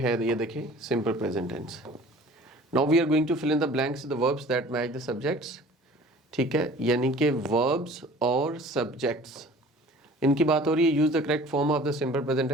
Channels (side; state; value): both; normal; correlation 0.46